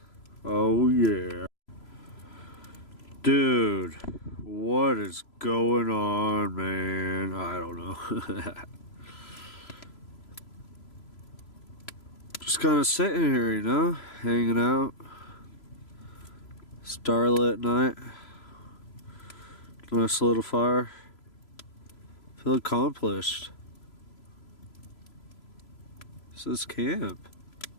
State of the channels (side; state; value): right; late; 3.0 ms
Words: Oh yeah. Dude, what is going on, man? I don't know. Just kind of sitting here, you know, hanging out. Starlit night. Nice little fire. Feel accomplished. This is camp.